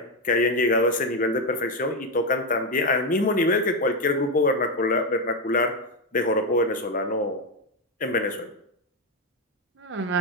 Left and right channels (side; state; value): both; normal; correlation 0.07